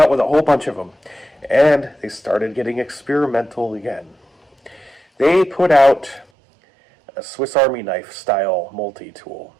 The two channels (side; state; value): left; drops out; at 6.2 s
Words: with a whole bunch of them. And they started getting experimental again. They put out a Swiss Army knife style multi-tool.